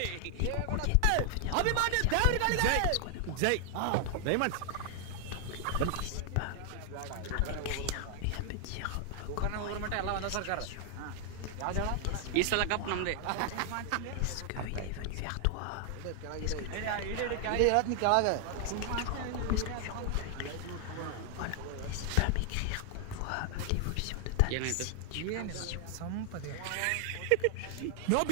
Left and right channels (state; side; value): different; both; correlation 0.00